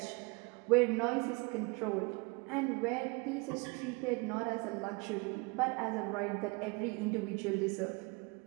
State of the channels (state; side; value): quieter; left; 28.3 dB